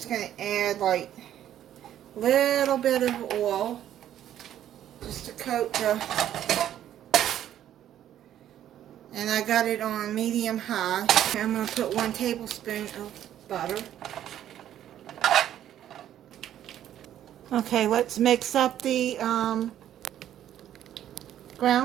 going to add like a little bit of oil just to coat the, and I got it on medium high. I'm going to put 1 tablespoon of butter. Okay, let's mix up the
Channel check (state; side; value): quieter; left; 11.3 dB